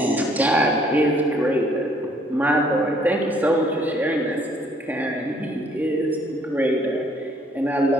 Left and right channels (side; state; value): both; normal; correlation 0.63